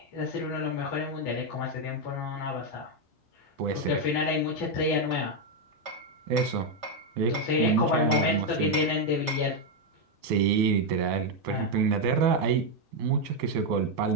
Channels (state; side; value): normal; both; correlation 0.03